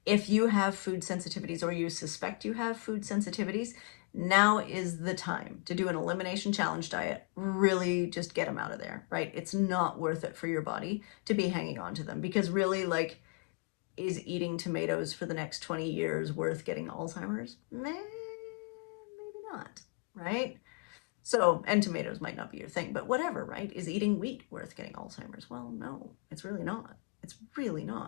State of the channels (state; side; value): quieter; right; 32.4 dB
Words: if you have food sensitivities or you suspect you have food sensitivities, now is the time to do an elimination challenge diet. Really just get them out of there, right? It's not worth it for your body to be hanging on to them because really, like, is eating tomatoes for the next 20 years worth getting Alzheimer's? Maybe not, right? So, and tomatoes might not be your thing, but whatever, right? Is eating wheat worth getting Alzheimer's? Well, no, it's really not. It's really